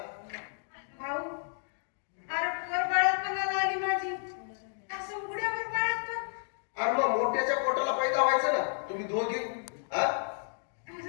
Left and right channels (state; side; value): silent; right; digital silence